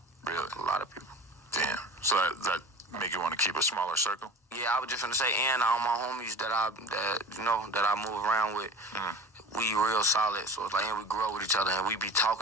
Really? A lot of people. Damn. So that make you want to keep a smaller circle? Yeah, I was just gonna say, and all my homies that I move around with, we real solid. So it's like, and we grow with each other, and we be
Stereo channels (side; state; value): both; normal; correlation 0.38